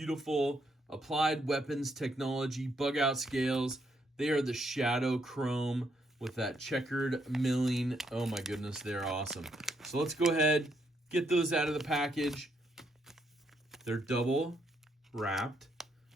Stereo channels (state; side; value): normal; both; correlation 0.75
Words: Applied Weapons Technology bug out scales. They are the shadow chrome with that checkered milling. Oh my goodness, they're awesome. So let's go ahead, get those out of the package. They're double wrapped.